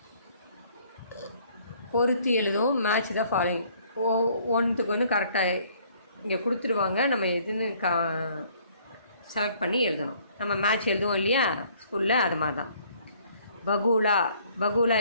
பொருத்தி எழுதும். மேட்ச் தான் ஃபாலோயிங். ஒன்றுத்துக்கு ஒன்று கரெக்டாக இங்கே கொடுத்துருவாங்க, நம்ம எதுன்னு செலக்ட் பண்ணி எழுதணும். நம்ம மேட்ச் எழுதுவோம் இல்லையா ஸ்கூலில், அது மாதிரி தான். பகூலா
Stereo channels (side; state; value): both; inverted; correlation -0.61